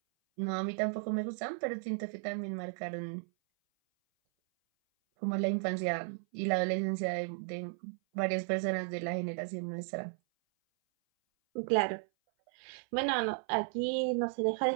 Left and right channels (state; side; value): silent; left; 55 dB below the other